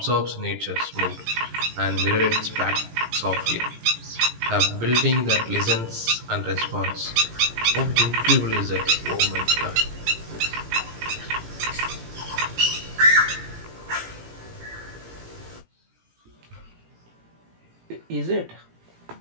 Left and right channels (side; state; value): left; late; 18 ms